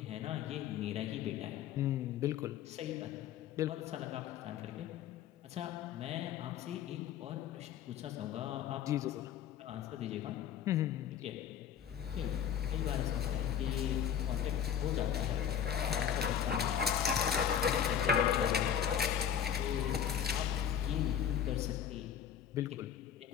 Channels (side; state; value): right; quieter; 8.9 dB